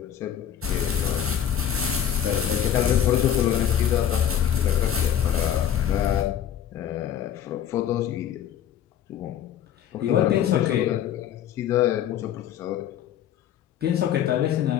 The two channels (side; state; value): right; quieter; 9.8 dB